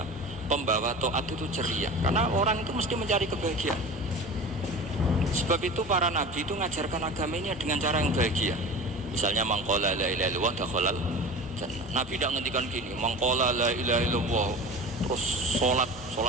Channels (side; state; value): both; normal; correlation 0.34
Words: pembawa taat itu ceria. Karena orang itu mesti mencari kebahagiaan. Sebab itu para nabi itu mengajarkan agama ini dengan cara yang bahagia. Misalnya mangqala la ilaha illallah dakhalal jannah. Nabi tidak ngendikan gini, mangqala la ilaha illallah terus